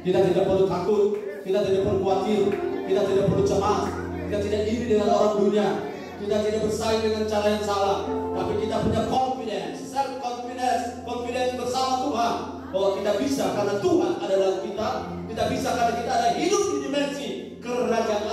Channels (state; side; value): identical; both; correlation 1.00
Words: Kita tidak perlu takut, kita tidak perlu khawatir, kita tidak perlu cemas, kita tidak iri dengan orang dunia, kita tidak bersaing dengan cara yang salah, tapi kita punya confidence, self confidence bersama Tuhan bahwa kita bisa karena Tuhan ada dalam kita. Kita bisa karena kita ada hidup di dimensi kerajaan